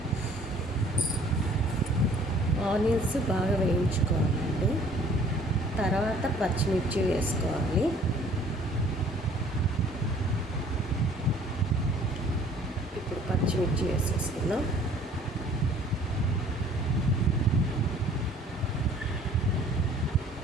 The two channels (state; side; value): normal; both; correlation 0.54